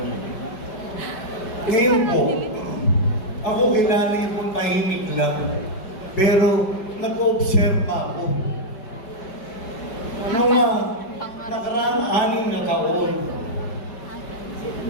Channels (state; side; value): late; right; 5.1 ms